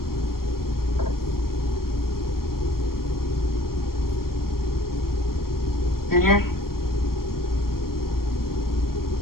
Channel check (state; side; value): late; right; 0.93 ms